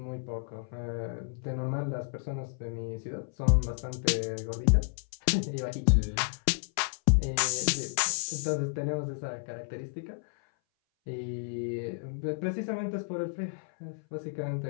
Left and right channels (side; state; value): right; silent; 57 dB below the other